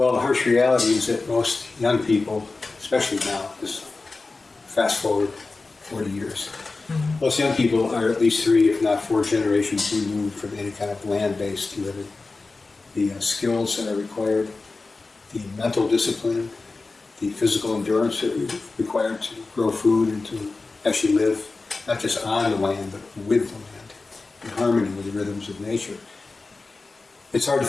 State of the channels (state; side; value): quieter; right; 3.7 dB